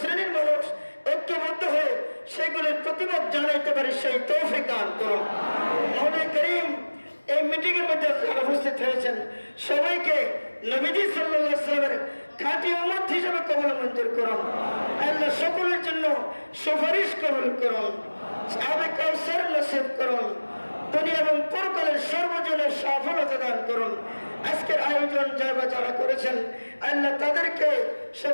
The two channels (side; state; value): both; inverted; correlation -1.00